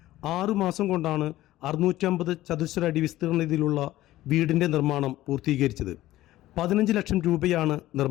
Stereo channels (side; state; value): right; quieter; 15.5 dB